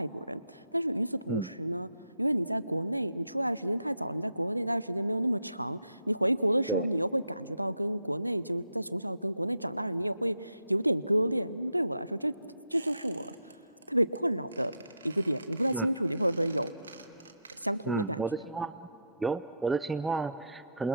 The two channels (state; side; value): inverted; both; correlation -0.73